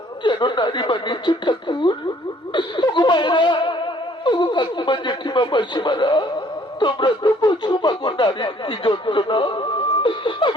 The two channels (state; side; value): normal; both; correlation 0.60